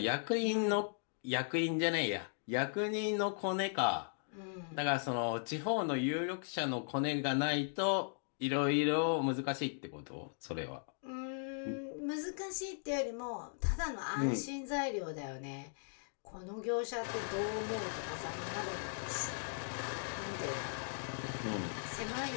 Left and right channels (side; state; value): right; silent; digital silence